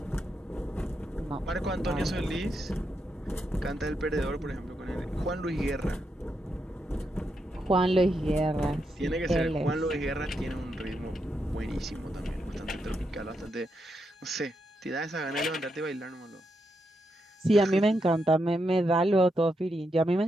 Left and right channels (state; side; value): normal; both; correlation 0.83